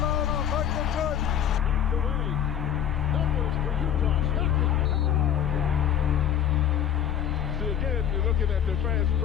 Again, you're looking at the fast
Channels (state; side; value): quieter; right; 9.6 dB